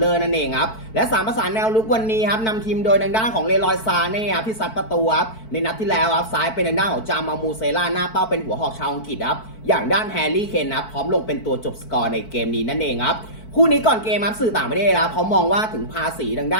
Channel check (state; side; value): late; right; 4.5 ms